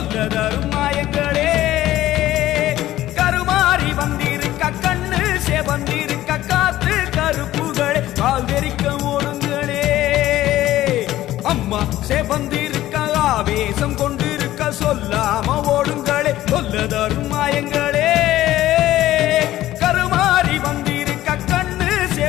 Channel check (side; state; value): right; quieter; 14.6 dB